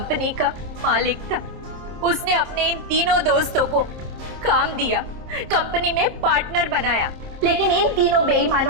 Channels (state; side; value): late; left; 26 ms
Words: का मालिक था। उसने अपने इन तीनों दोस्तों को काम दिया, कंपनी में पार्टनर बनाया, लेकिन इन तीनों